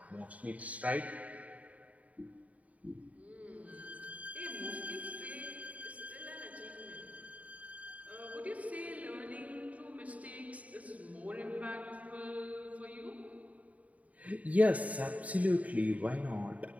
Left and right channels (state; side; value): late; left; 0.069 ms